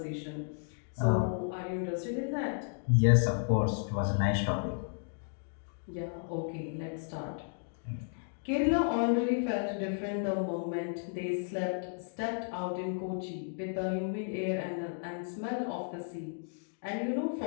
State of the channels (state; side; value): silent; right; digital silence